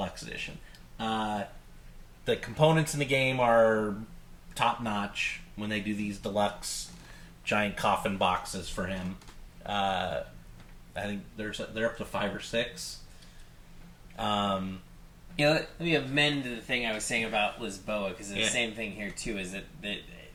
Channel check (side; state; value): both; identical; correlation 1.00